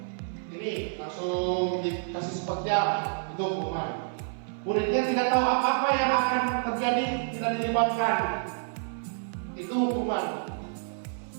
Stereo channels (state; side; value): silent; left; 56 dB below the other